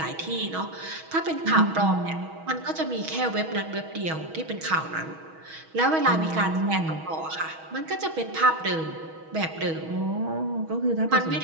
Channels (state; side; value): late; left; 6.3 ms